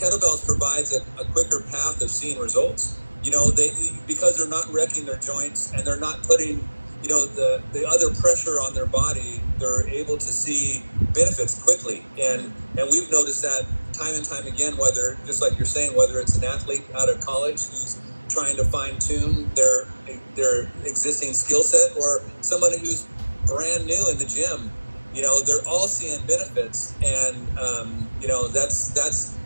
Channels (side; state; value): both; inverted; correlation -1.00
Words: provides a quicker path of seeing results. You know, because they're not wrecking their joints and they're not putting, you know, the other pressure on their body, they're able to see benefits quickly. And we've noticed that time and time again, whether, just like you're saying, whether it's an athlete out of college who's trying to fine tune their existing skill set, or somebody who's brand new in the gym, you know, they're all seeing benefits. And, you know, that's